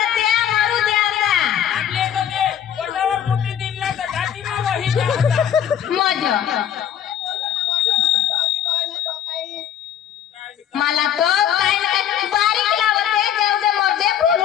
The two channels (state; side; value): quieter; right; 9.8 dB